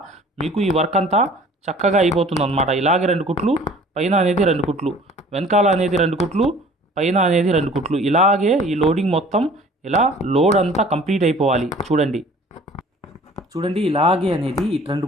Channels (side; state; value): both; normal; correlation 0.49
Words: మీకు ఈ వర్క్ అంతా చక్కగా అయిపోతుంది అనమాట. ఇలాగే 2 కుట్లు, పైన అనేది 2 కుట్లు, వెనకాల అనేది 2 కుట్లు, పైన అనేది 2 కుట్లు. ఇలాగే ఈ లోడింగ్ మొత్తం ఇలా లోడ్ అంతా కంప్లీట్ అయిపోవాలి. చూడండి ఇలాగే అనేది ఈ 2